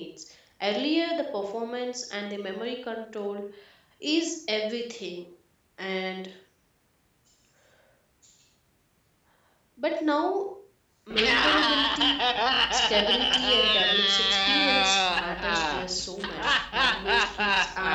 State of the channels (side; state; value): both; identical; correlation 1.00